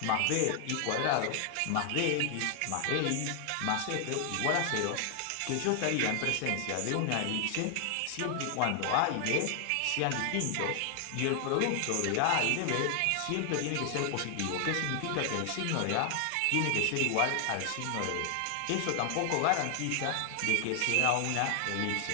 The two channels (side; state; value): both; different; correlation 0.00